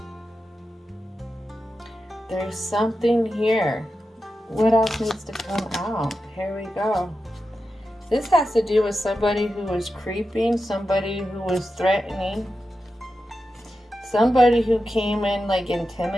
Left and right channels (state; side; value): normal; both; correlation 0.90